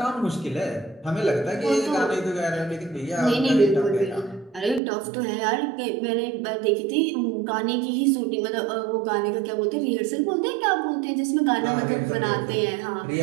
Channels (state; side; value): drops out; left; at 4.8 s